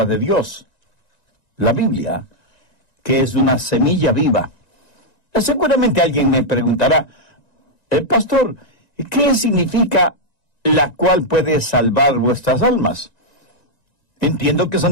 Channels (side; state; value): right; late; 1.9 ms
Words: de Dios, la Biblia, que es una semilla viva. Seguramente alguien me preguntará: pastor, ¿qué significa la cual puede salvar vuestras almas? Entiendo que